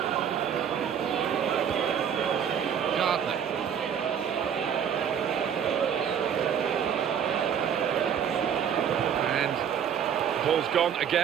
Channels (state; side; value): quieter; left; 8.3 dB